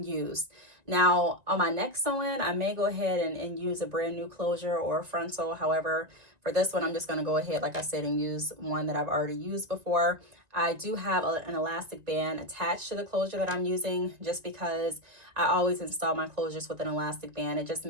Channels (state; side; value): late; left; 1.9 ms